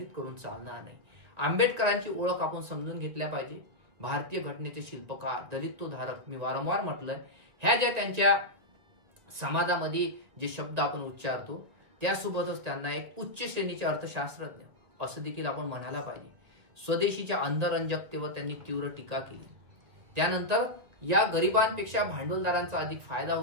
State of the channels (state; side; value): late; left; 2.3 ms